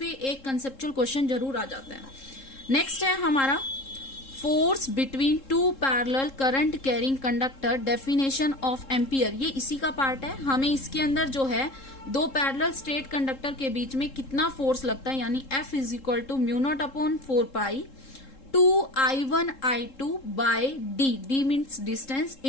एक कंसेप्चुअल क्वेश्चन जरूर आ जाता है। नेक्स्ट है हमारा force between two parallel current carrying conductor, definition of ampere, ये इसी का पार्ट है। हमें इसके अंदर जो है दो पैरेलल स्ट्रेट कंडक्टर के बीच में कितना फोर्स लगता है, यानी F is equal to μ0/4π 2I1I2 by D means distance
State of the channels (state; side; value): late; right; 3.7 ms